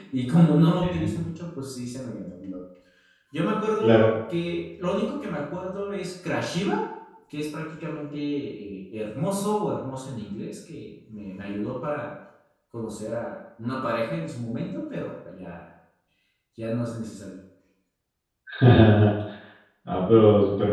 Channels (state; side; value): identical; both; correlation 1.00